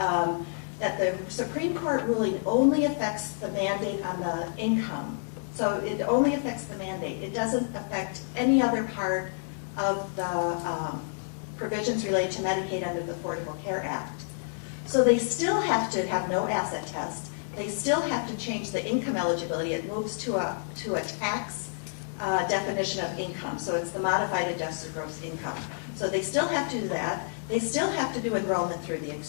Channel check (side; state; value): right; silent; digital silence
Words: that the Supreme Court ruling only affects the mandate on the income. So it only affects the mandate. It doesn't affect any other part of the provisions related to Medicaid under the Affordable Care Act. So they still have to have no asset test. They still have to change the income eligibility. It moves to a tax definition of income. So it's the modified adjusted gross income. So they still have to do that. They still have to do enrollment through the